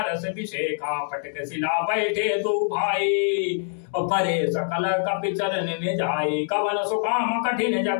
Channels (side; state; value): right; silent; 62 dB below the other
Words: विषेखा। पटक शिला बैठे दो भाई परे सकल कपि चरण में जाए। कवन सुकाम कठिन